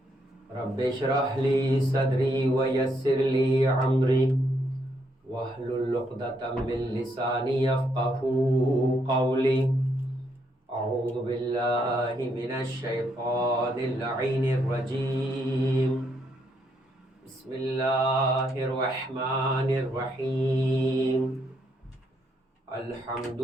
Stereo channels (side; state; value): both; normal; correlation 0.75